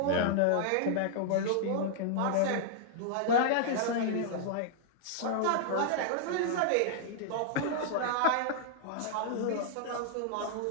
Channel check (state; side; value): different; both; correlation -0.01